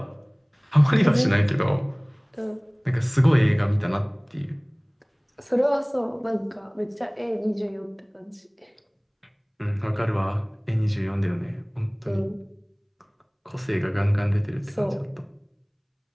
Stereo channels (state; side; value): identical; both; correlation 1.00